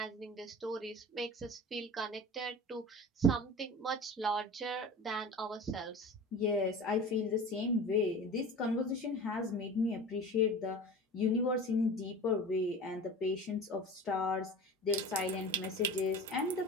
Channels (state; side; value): normal; both; correlation 0.35